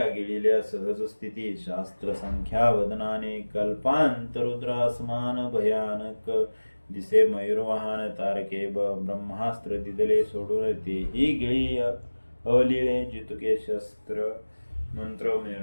गिळिल्या सहज स्थिती. शास्त्र संख्या वदनाने. कल्पांतरुद्रासमान भयानक दिसे मयूरवाहन. तारके ब्रह्मास्त्र दिदले सोडून. तेही गिळी अवलिळे जितुके शस्त्र मंत्र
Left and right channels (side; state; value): both; inverted; correlation -1.00